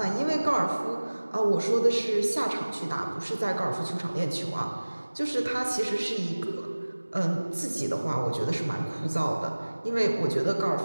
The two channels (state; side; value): inverted; both; correlation -1.00